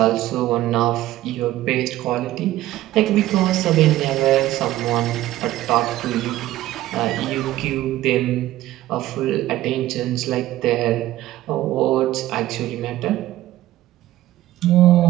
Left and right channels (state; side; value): quieter; left; 15.1 dB